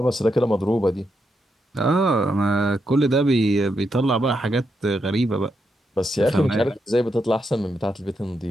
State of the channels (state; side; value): normal; both; correlation 0.82